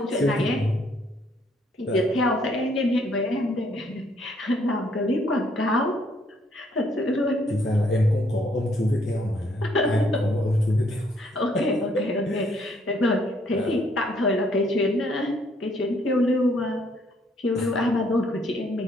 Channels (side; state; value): both; normal; correlation 0.68